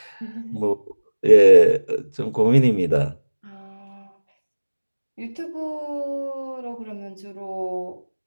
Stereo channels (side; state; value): both; inverted; correlation -1.00